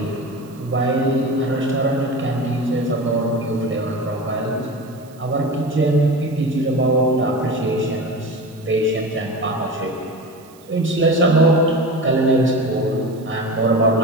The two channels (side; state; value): right; noise; hiss, 27 dB below the sound